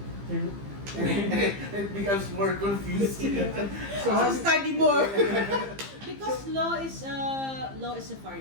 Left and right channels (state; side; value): late; left; 15 ms